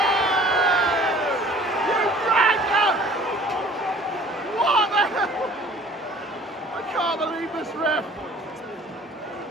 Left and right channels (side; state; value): both; normal; correlation 0.50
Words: You dragon! What the hell? I can't believe this ref!